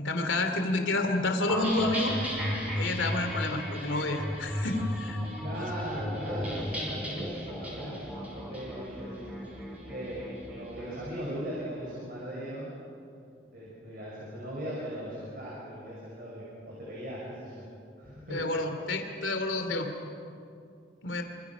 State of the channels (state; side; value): normal; both; correlation 0.45